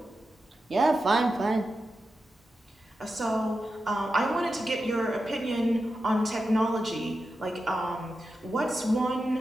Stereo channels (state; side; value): normal; both; correlation 0.90